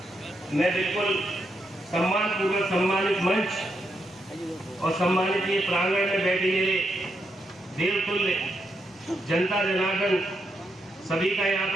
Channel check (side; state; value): both; normal; correlation 0.81